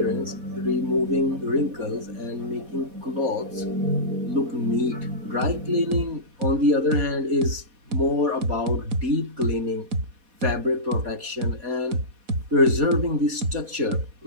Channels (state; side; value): late; left; 4.1 ms